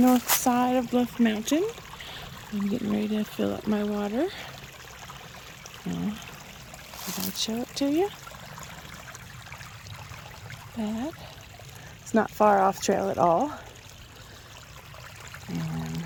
side of Bluff Mountain. I'm getting ready to fill up my water. So, I'll show it to you. That. It's not far off trail at all. And,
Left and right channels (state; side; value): identical; both; correlation 1.00